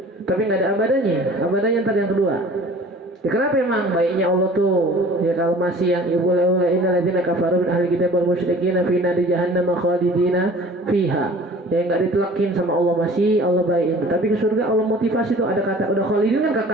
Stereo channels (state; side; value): normal; both; correlation 0.47